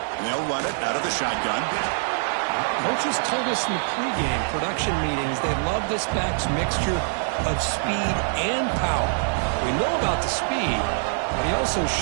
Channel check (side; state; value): left; silent; digital silence